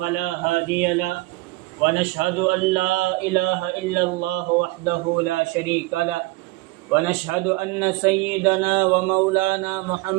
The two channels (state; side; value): quieter; left; 21.3 dB